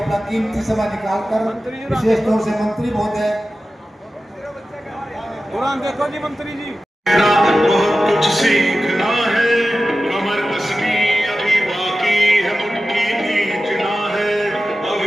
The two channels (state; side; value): normal; both; correlation 0.94